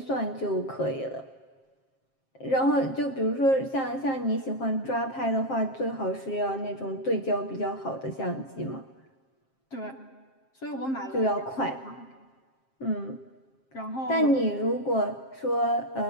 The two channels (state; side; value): late; right; 7.5 ms